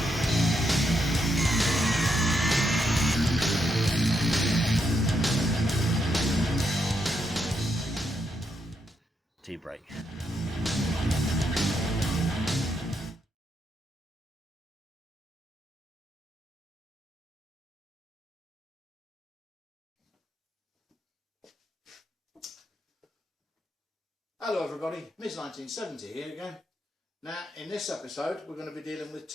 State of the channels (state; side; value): normal; both; correlation 0.80